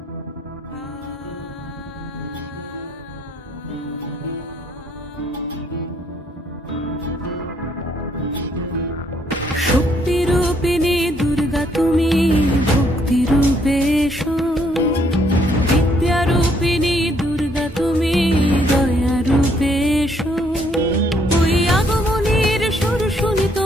দুর্গা তুমি ভক্তি রূপে এসো, বিদ্যারূপিণী দুর্গা তুমি দয়া রূপে এসো। ওই আগমনীর সুর শুনি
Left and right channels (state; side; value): normal; both; correlation 0.69